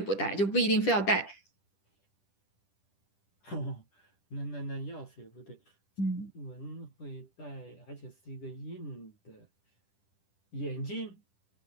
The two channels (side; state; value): right; late; 10 ms